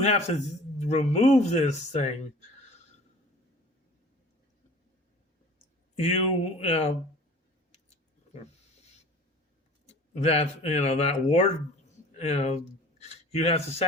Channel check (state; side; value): normal; both; correlation 0.44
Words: have to remove this thing, that ward, you have to